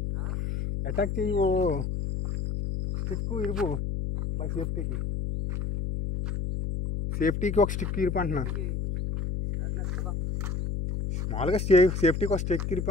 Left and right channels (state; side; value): noise; left; hum, 2 dB below the sound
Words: అటాక్ చేయవు. స్టిక్ ఇరుపు బై సేఫ్టీకి ఒక స్టిక్ ఇరిపంటున్నా. మామూలుగా సేఫ్టీకి ఒక స్టిక్